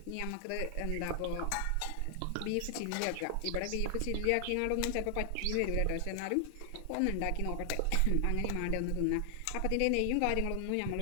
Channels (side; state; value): both; different; correlation 0.00